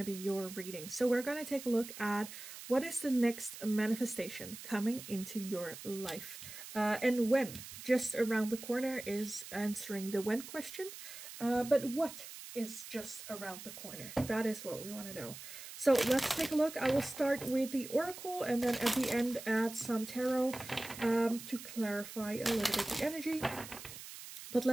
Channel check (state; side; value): noise; right; hiss, 12 dB below the sound